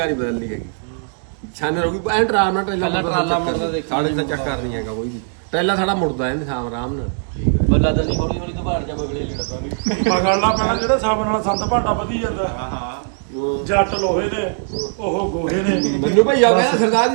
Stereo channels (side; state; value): left; silent; digital silence